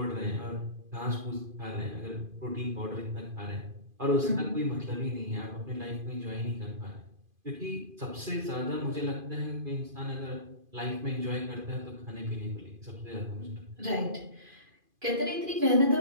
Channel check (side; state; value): left; late; 2.5 ms